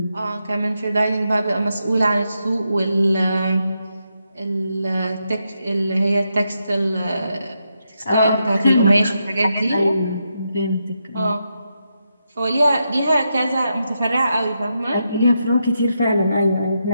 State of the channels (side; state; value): both; inverted; correlation -0.84